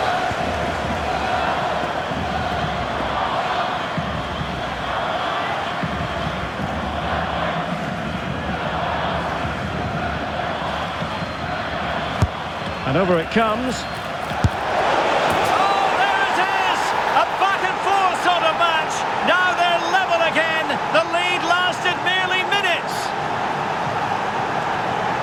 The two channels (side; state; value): both; identical; correlation 1.00